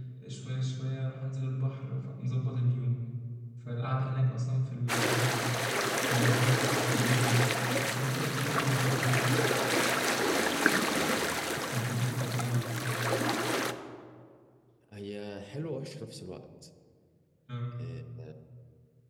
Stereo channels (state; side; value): identical; both; correlation 1.00